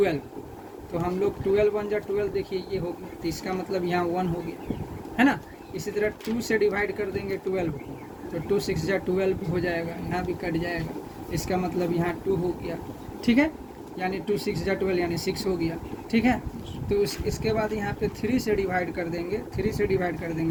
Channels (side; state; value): both; identical; correlation 1.00